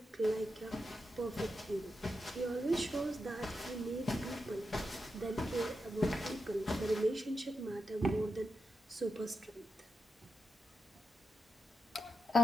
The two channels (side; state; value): both; normal; correlation 0.87